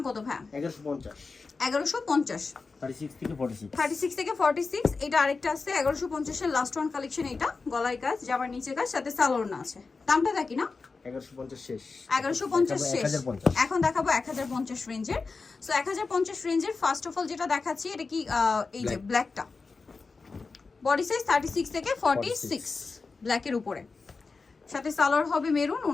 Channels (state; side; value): quieter; right; 4.3 dB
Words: কত ভাই? 1150। 1150। 36 থেকে 46। এটা আরেকটা আছে 1150 এর লাস্ট ওয়ান কালেকশন। এটা গলায় কাজ, জামার নিচে কাজ, সাথে সালোয়ার আছে। দামটা দেখি না, 1150 শেষ। 1150 শেষ। এখন দেখাবো 1050 রেঞ্জের। সো 1050 রেঞ্জের ফার্স্ট অফ অল যেটা দেখাচ্ছি এটা কি এই যে ব্ল্যাকটা। বডি সাইজ 36 থেকে 46, ব্ল্যাকের উপরে, সাথে সালোয়ার হবে মেরুন,